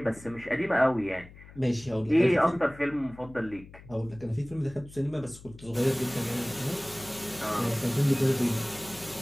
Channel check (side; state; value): left; noise; hum, 19 dB below the sound